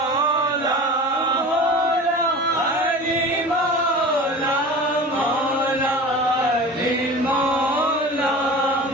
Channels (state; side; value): normal; both; correlation 0.37